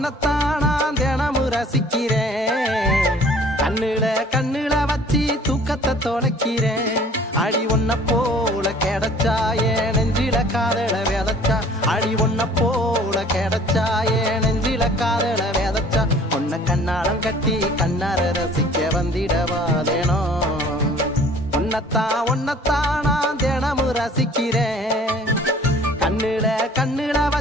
நான் தினமும் ரசிக்கிறேன். கண்ணுல வச்சு தூக்கத்தை தொலைக்கிறேன். அடி ஒன்ன போல கிடைச்சா என் நெஞ்சில காதல விதைச்சா. அடி ஒன்ன போல கிடைச்சா என் நெஞ்சில காதல விதைச்சா. உன்னை கண்ணாலம் கட்டி கண்ணார ரசிக்க வந்திடவாதேனோ. ஒன்னத்தான் நான் தினமும் ரசிக்கிறேன். கண்ணுல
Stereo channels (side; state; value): both; normal; correlation 0.52